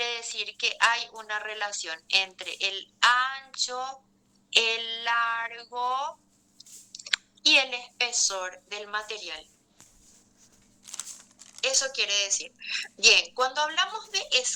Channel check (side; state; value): both; identical; correlation 1.00